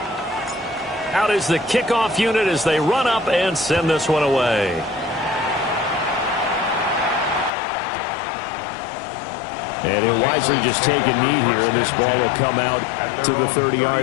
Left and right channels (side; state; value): right; drops out; at 7.5 s